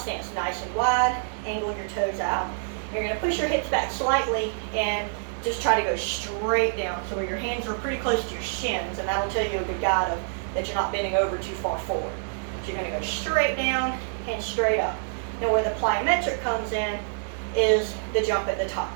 nice and wide, angle your toes out. You're going to push your hips back slightly and just try to go straight down, so where your hands are pretty close to your shins, and that'll tell you a good guide of that you're not bending over too far forward. So you're going to go straight down and straight up. Now where the plyometric comes in is the jump at the top.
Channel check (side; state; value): left; silent; digital silence